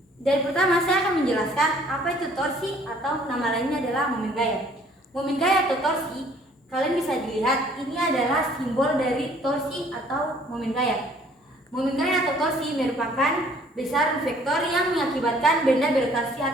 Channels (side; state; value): both; normal; correlation 0.57